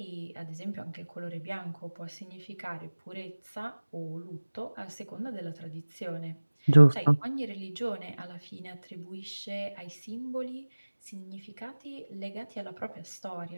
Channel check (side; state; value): both; inverted; correlation -1.00